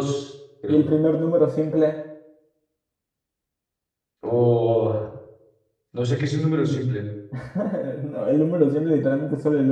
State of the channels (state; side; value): identical; both; correlation 1.00